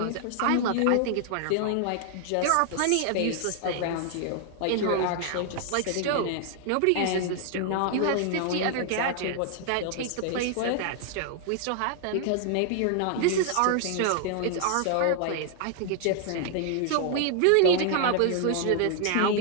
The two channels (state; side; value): different; both; correlation 0.00